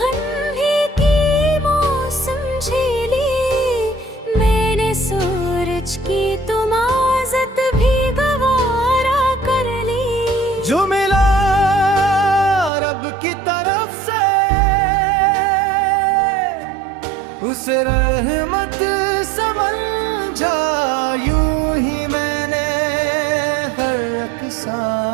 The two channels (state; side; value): drops out; left; at 12.7 s